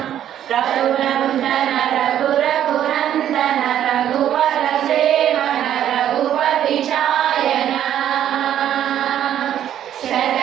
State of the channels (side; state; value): left; quieter; 10.7 dB